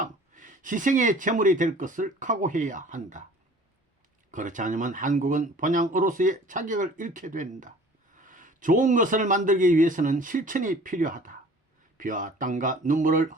희생의 제물이 될 것을 각오해야 한다. 그렇지 않으면 한국은 본향으로서의 자격을 잃게 된다. 좋은 것을 만들기 위해서는 실천이 필요하다. 피와 땀과 눈물을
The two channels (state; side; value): normal; both; correlation 0.48